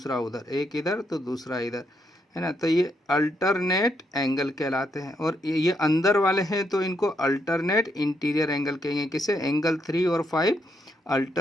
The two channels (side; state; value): both; normal; correlation 0.78